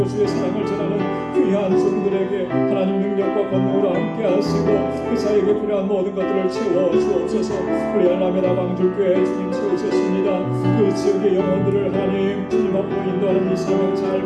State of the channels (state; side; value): identical; both; correlation 1.00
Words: 주의 사랑을 전하는 귀한 종들에게 하나님 능력과 권능으로 함께 하시고 그 사에게 필요한 모든 것들을 채워 주옵소서. 우리 알라메다 방주교회 주님 세우셨습니다. 그 지역의 영혼들을 하나님 주님 앞으로 인도하는 이 사명 잘